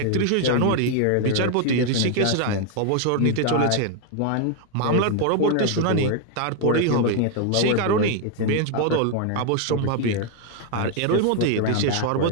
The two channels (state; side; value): different; both; correlation 0.00